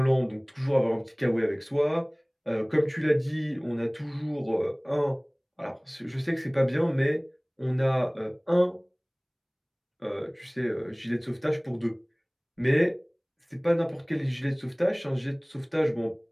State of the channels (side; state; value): both; identical; correlation 1.00